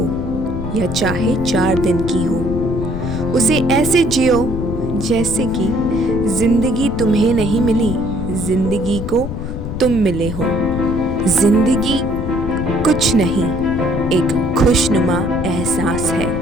या चाहे 4 दिन की हो, उसे ऐसे जियो जैसे कि जिंदगी तुम्हें नहीं मिली, जिंदगी को तुम मिले हो। जिंदगी कुछ नहीं, एक खुशनुमा एहसास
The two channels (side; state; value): left; noise; rumble, 6 dB below the sound